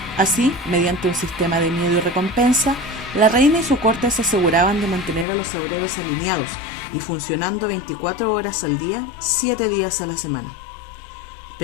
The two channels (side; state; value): right; drops out; at 5.2 s